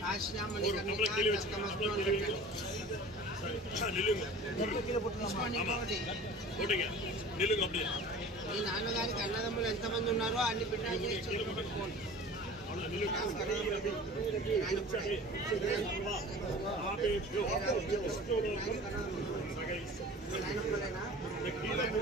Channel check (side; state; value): both; normal; correlation 0.41